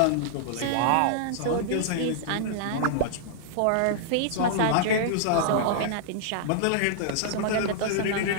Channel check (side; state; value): both; different; correlation -0.01